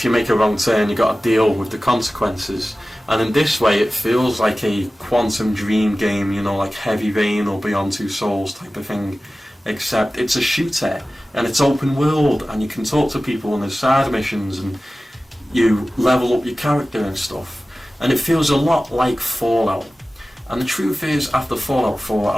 you make a wrong turn, you got to deal with the consequences. And in this way, it feels like a Quantum Dream game, you know, like Heavy Rain or Beyond Two Souls type of thing, except it's a shooter and it's open world, and you can talk to people and there's side missions, and you level up your character and stuff, and it feels a lot like Fallout. And the truth is, after Fallout 4, I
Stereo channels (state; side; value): normal; both; correlation 0.96